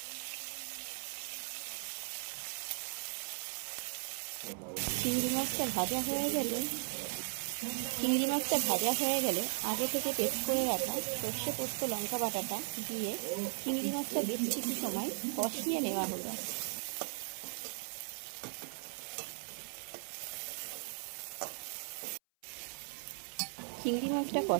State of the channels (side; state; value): left; silent; 53 dB below the other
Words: চিংড়ি মাছটা ভাজা হয়ে গেলে আগে থেকে পেস্ট করে রাখা সর্ষে পোস্ত লঙ্কা বাটাটা দিয়ে চিংড়ি মাছটা বেশ কিছু সময় কষিয়ে নেওয়া হলো। চিংড়ি মাছটা